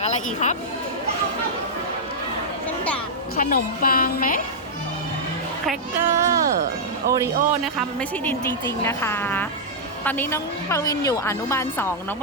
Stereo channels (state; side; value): normal; both; correlation -0.07